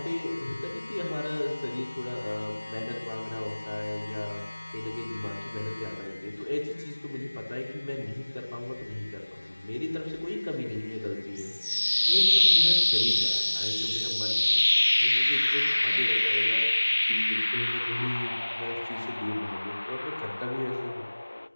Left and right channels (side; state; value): both; inverted; correlation -1.00